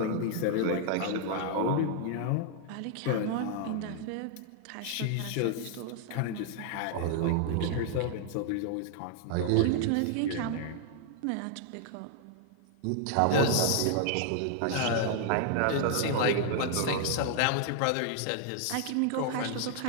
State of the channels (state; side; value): different; both; correlation 0.00